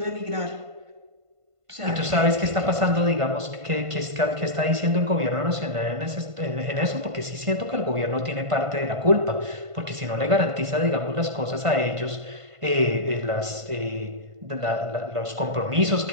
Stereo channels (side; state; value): left; late; 1.5 ms